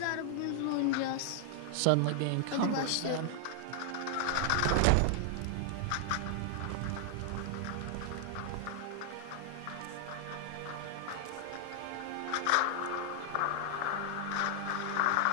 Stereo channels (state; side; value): different; both; correlation 0.00